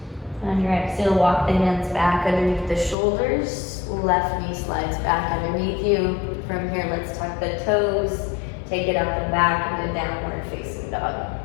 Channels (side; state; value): right; drops out; at 3.0 s